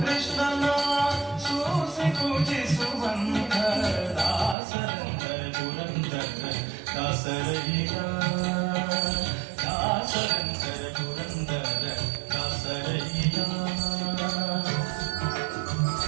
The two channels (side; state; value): left; drops out; at 4.5 s